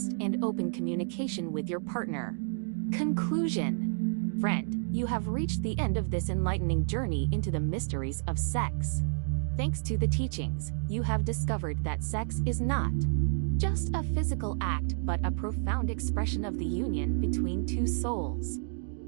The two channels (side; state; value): left; silent; digital silence